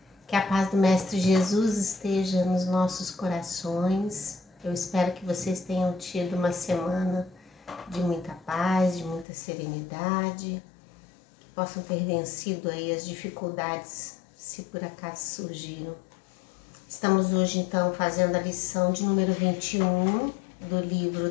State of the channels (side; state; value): right; drops out; at 9.2 s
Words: Que a paz do Mestre Jesus esteja nos nossos corações. Eu espero que vocês tenham tido uma semana de muita paz, de muita serenidade, que possam ter vencido aí as dificuldades, se por acaso surgiram. Estamos hoje, então, fazendo a lição de número 21 do livro